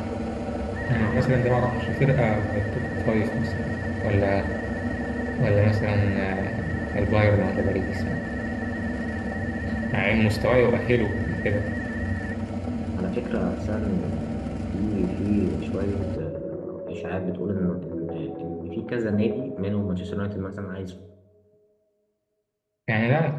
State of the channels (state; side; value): identical; both; correlation 1.00